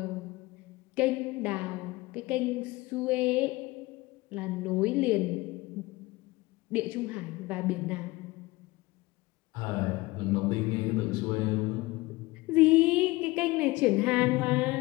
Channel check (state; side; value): quieter; right; 20.9 dB